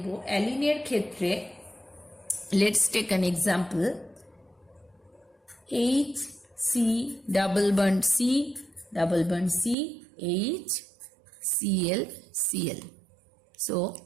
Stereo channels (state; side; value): drops out; left; at 9.8 s